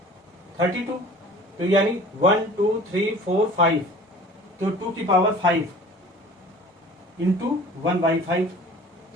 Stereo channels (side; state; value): both; normal; correlation 0.45